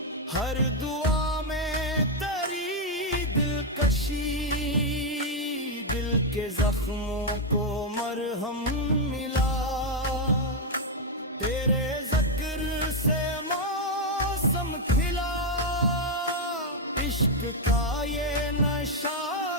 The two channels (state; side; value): normal; both; correlation 0.01